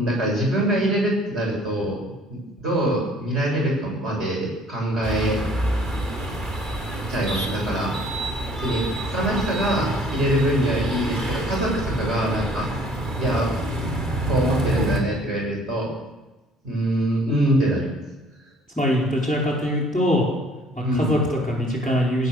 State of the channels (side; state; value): both; normal; correlation 0.56